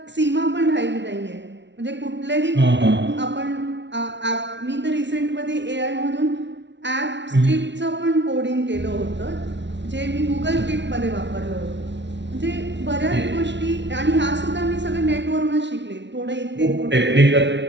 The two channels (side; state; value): left; late; 0.52 ms